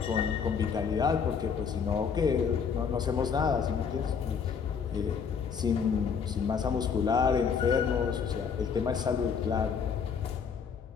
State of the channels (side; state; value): right; quieter; 6.4 dB